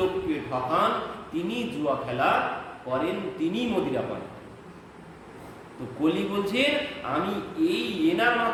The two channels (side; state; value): both; identical; correlation 1.00